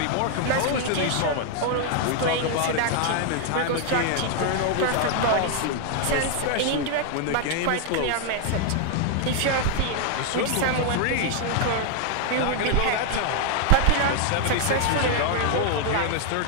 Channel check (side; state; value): both; different; correlation 0.00